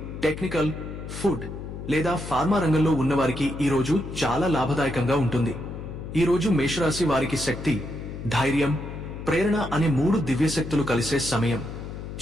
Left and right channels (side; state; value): left; noise; hum, 9 dB below the sound